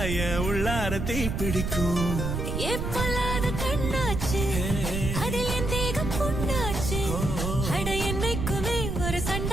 உள்ளார தீ பிடிக்கும் எப்பொல்லாத கண்ணாச்சு அதில் என் தேகம் புண்ணாச்சு அட என்னைக்குமே ஒரு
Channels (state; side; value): noise; right; rumble, 2 dB below the sound